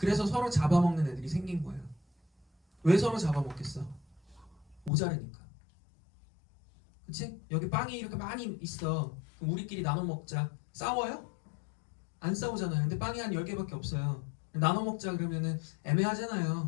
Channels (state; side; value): drops out; right; at 4.9 s